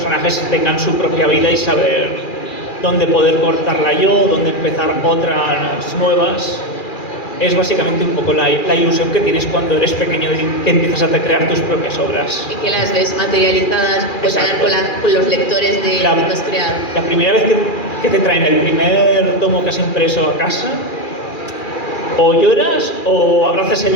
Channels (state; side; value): late; right; 2.4 ms